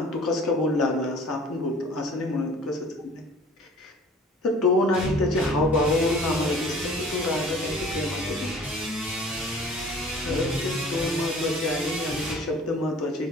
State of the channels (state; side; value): normal; both; correlation 0.48